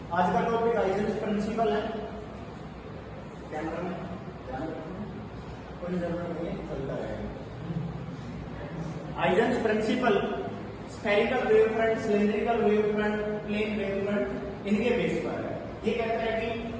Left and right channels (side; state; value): both; identical; correlation 1.00